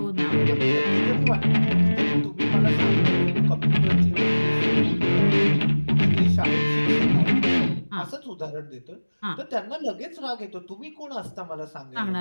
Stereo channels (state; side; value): inverted; both; correlation -1.00